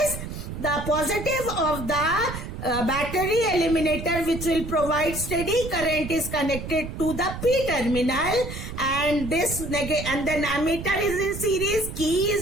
the positive of the battery eliminator, which will provide steady current, is connected to the P terminal, and then ammeter is in series, key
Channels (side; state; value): right; noise; rumble, 8 dB below the sound